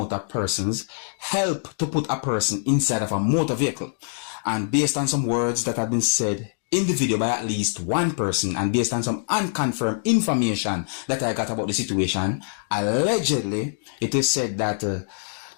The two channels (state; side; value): silent; right; digital silence